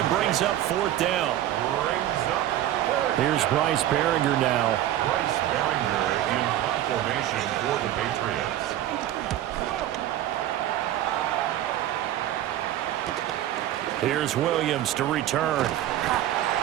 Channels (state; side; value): quieter; left; 12.8 dB